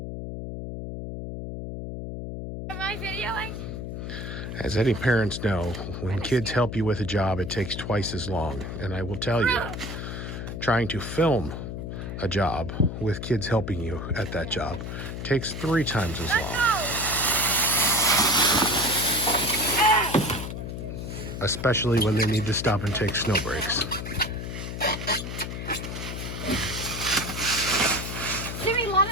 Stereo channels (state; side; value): noise; left; hum, 6 dB below the sound